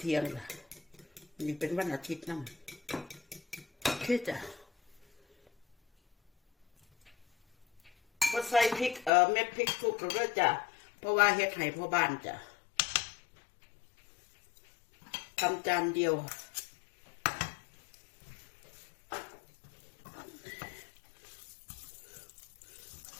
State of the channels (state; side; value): drops out; right; at 9.1 s